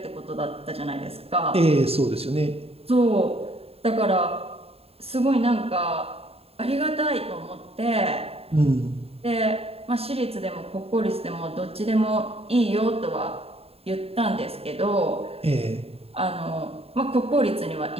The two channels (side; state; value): left; late; 0.29 ms